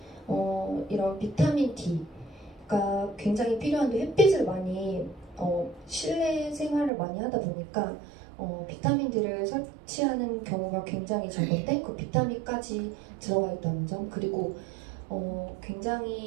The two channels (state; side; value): drops out; left; at 6.9 s